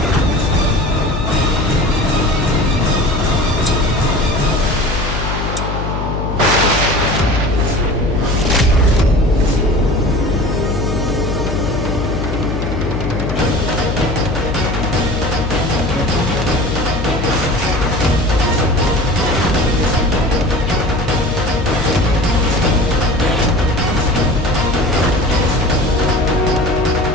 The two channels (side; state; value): left; noise; hum, 4 dB below the sound